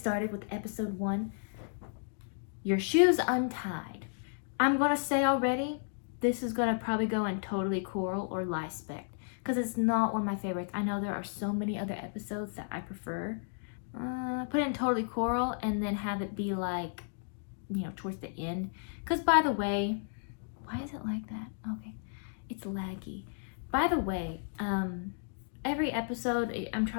with episode 1. Your Shoes Untied. I'm gonna say already, this is gonna probably go in totally coral or Lispect because it's not one of my favorites. I know there are so many other episodes that I prefer. Put it in totally coral and then have it be like, you know, towards the end. Because by the way, why is it like that? Okay, it's laggy. By the way, every episode I'm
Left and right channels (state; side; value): silent; right; digital silence